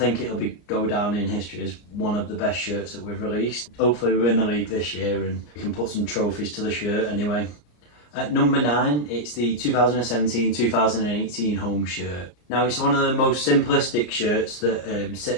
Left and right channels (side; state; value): right; late; 34 ms